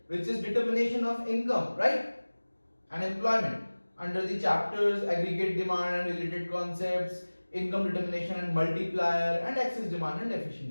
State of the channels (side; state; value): both; inverted; correlation -1.00